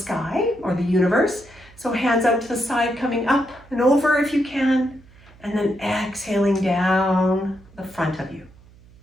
or the universe. So hands out to the side, coming up and over if you can, and then exhaling down the front of you.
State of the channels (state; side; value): noise; right; hum, 25 dB below the sound